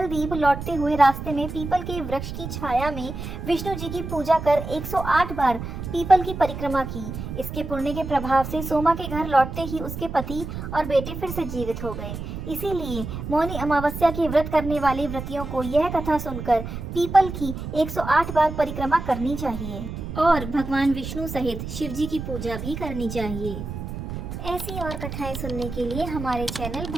द्वीप लौटते हुए रास्ते में पीपल के वृक्ष की छाया में विष्णु जी की पूजा कर 108 बार पीपल की परिक्रमा की। इसके पुण्य के प्रभाव से सोमा के घर लौटते ही उसके पति और बेटे फिर से जीवित हो गए। इसीलिए मौनी अमावस्या के व्रत करने वाले व्रतियों को यह कथा सुनकर पीपल की 108 बार परिक्रमा करनी चाहिए और भगवान विष्णु सहित शिव जी की पूजा भी करनी चाहिए। ऐसी और कथाएं सुनने के लिए हमारे चैनल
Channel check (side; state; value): right; noise; rumble, 7 dB below the sound